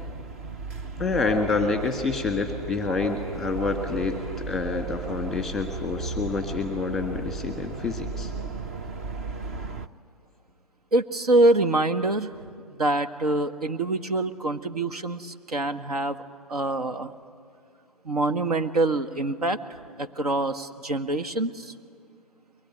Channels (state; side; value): normal; both; correlation 0.42